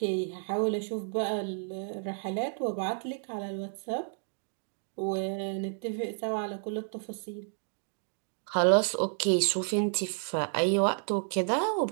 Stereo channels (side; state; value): left; silent; 57 dB below the other